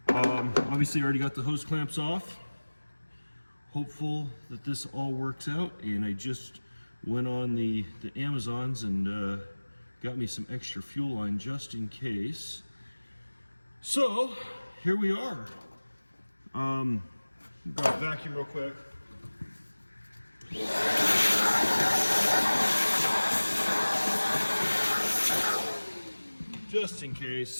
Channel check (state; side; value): inverted; both; correlation -1.00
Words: Obviously, I already got the hose clamps off. Hopeful that this all works out. And I just went on the Amazons and got me some extra fuel line just in case. So here we are. Grab a vacuum real quick. Just in